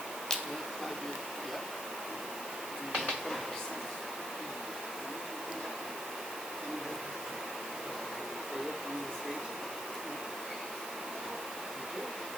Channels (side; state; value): right; noise; hiss, 8 dB below the sound